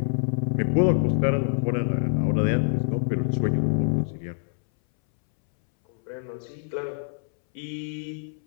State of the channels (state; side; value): silent; right; 61 dB below the other